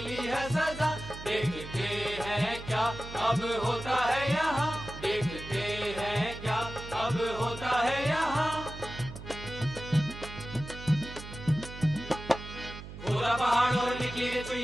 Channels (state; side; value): noise; right; hum, 12 dB below the sound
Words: है सजा। देखते हैं क्या अब होता है यहाँ, देखते हैं क्या अब होता है यहाँ। खोदा पहाड़ और निकली